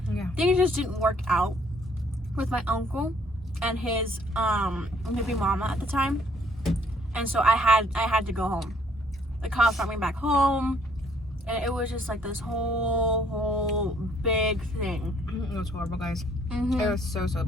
Yeah. Things just didn't work out with my uncle and his baby mama at the time. And so I had to go home. The cops brought me back home. And it was just like this whole big thing. It was horrible, guys. It was so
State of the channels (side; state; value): both; normal; correlation 0.63